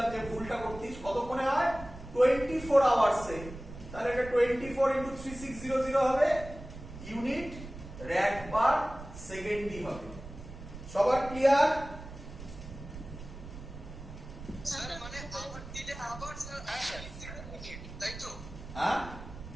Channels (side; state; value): right; noise; rumble, 13 dB below the sound